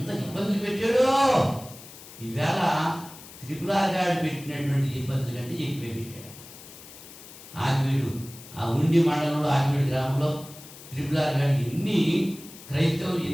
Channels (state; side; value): noise; left; hiss, 17 dB below the sound